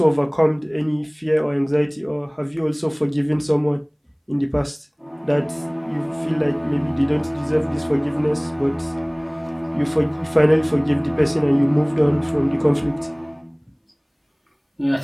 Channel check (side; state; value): both; identical; correlation 1.00